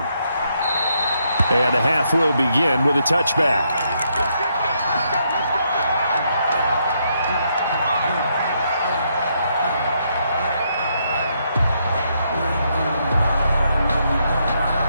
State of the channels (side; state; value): both; inverted; correlation -0.76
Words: And the half will begin with a touchback.